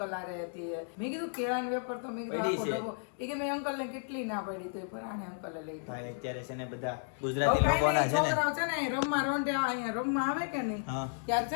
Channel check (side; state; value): right; silent; digital silence